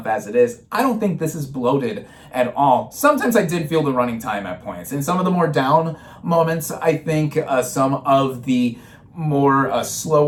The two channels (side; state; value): both; identical; correlation 1.00